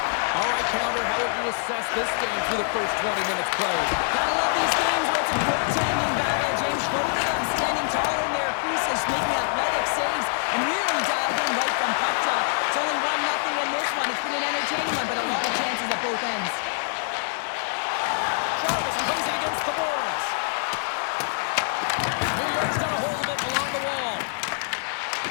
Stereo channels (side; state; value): right; silent; digital silence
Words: All right, Pounder, how would you assess this game through the first 20 minutes played? Gotta love these games where it's a goaltending battle, James. Both of them standing tall in their creases, making athletic saves, and really dialed in right from puck drop. It's only 1-0 in this one. It's been an entertaining one, but a lot of chances at both ends. Charles plays it against the boards. New York's got a hold of it along the wall.